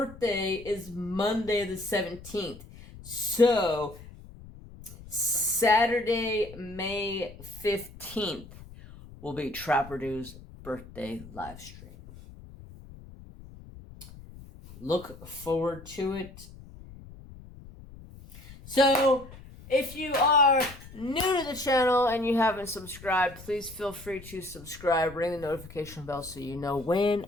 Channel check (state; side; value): noise; left; rumble, 18 dB below the sound